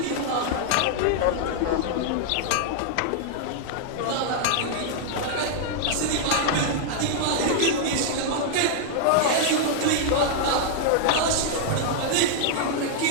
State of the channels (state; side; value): different; both; correlation 0.00